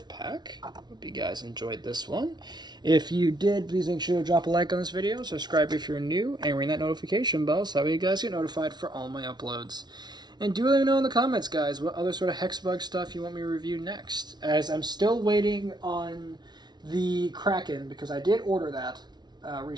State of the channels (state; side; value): late; left; 0.20 ms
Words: Hope you guys enjoyed this one. If you did, please make sure to drop a like on this video, subscribe if you're new, and ring that notification bell so that way you guys get notified for all my uploads. And do let me know in the comments, guys, what other sort of Hexbug stuff you want me to review next, as I'm still waiting on the Kraken, because I did order that